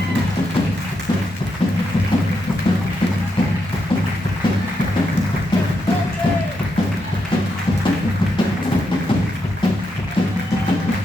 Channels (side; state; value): both; normal; correlation 0.82